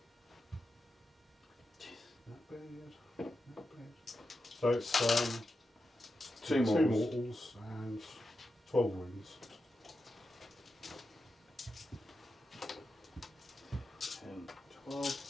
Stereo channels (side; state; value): both; normal; correlation 0.89